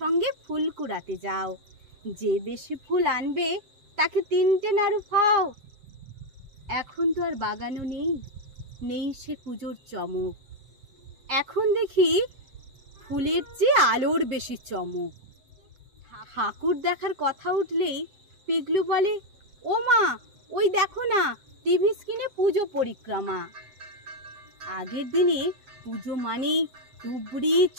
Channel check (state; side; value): late; left; 7.8 ms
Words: ফুল কুড়াতে যাও, যে বেশি ফুল আনবে তাকে 3টে নাড়ু খাও। এখন তো আর বাগানও নেই, নেই সে পুজোর চমক। এখন দেখি ফুলের চেয়ে আলোর বেশি চমক। ঠাকুর দেখার কথা উঠলেই পিগলু বলে, ও মা, ওই দেখো না টিভি স্ক্রিনে পুজো পরিক্রমা। আগের দিনে পুজো মানেই তুবড়ি